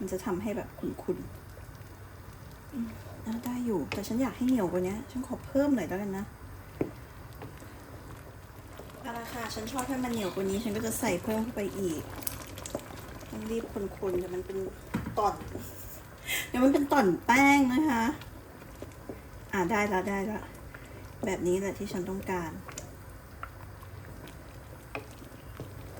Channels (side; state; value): both; identical; correlation 1.00